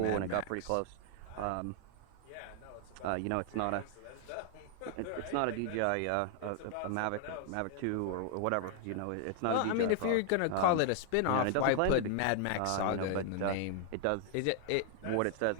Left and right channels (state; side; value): different; both; correlation 0.00